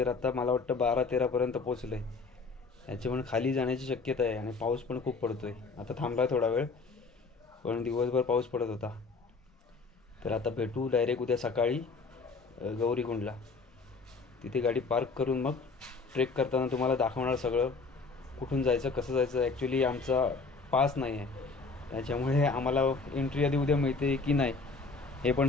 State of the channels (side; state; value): right; quieter; 4.2 dB